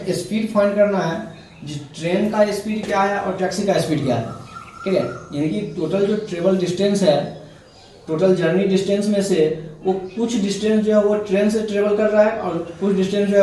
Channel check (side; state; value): both; identical; correlation 1.00